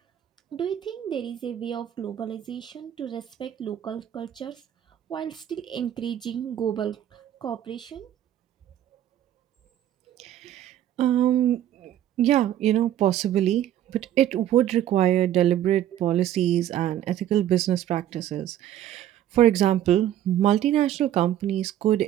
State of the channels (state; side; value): quieter; left; 11.6 dB